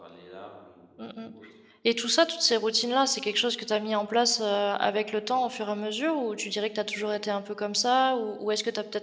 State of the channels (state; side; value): identical; both; correlation 1.00